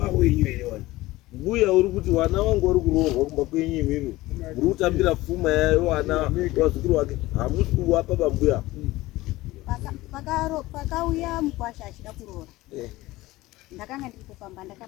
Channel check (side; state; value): right; quieter; 18.5 dB